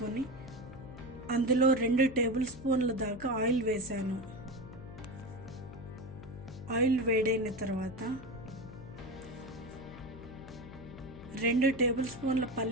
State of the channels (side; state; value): left; noise; hum, 15 dB below the sound